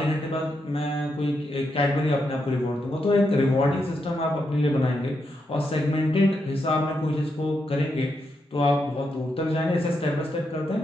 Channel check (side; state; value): both; normal; correlation 0.82